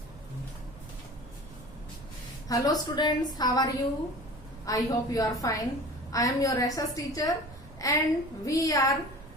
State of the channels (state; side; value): noise; right; rumble, 18 dB below the sound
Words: students, how are you? I hope you are fine. I am your SS teacher and we are